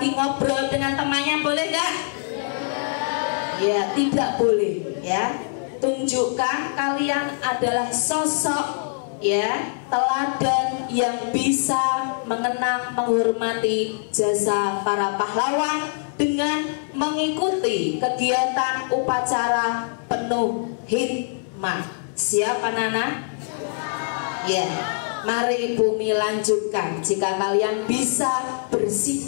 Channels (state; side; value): silent; right; 61 dB below the other